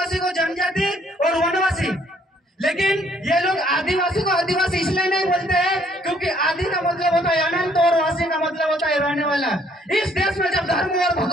को जनजाति और वनवासी, लेकिन ये लोग आदिवासी को आदिवासी इसलिए नहीं बोलते हैं क्योंकि आदि का मतलब होता है अनंत और वासी का मतलब होता है रहने वाला। इस देश में जब धर्म और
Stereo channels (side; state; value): both; normal; correlation 0.65